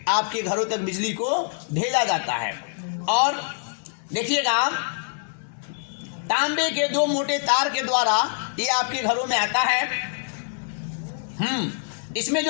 आपके घरों तक बिजली को भेजा जाता है। और देखिएगा तांबे के 2 मोटे तार के द्वारा ये आपके घरों में आता है। इसमें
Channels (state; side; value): silent; right; 62 dB below the other